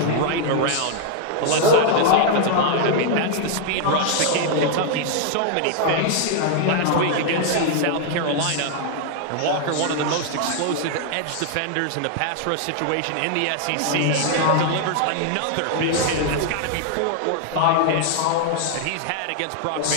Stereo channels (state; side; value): different; both; correlation 0.00